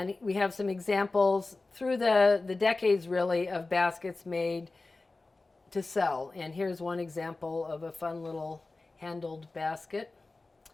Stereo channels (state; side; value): quieter; right; 3.4 dB